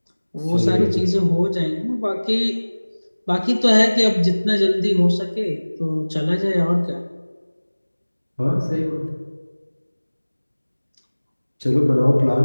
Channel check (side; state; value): both; inverted; correlation -1.00